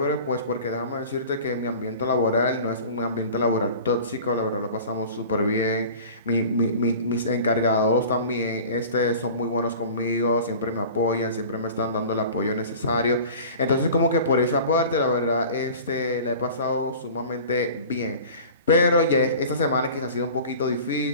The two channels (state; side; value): inverted; both; correlation -0.41